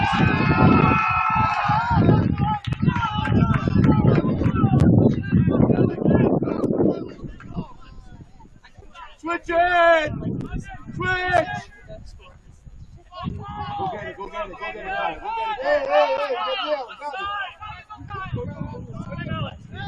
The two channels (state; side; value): identical; both; correlation 1.00